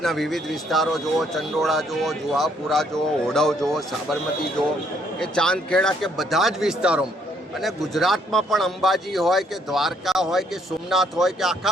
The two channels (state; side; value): normal; both; correlation 0.68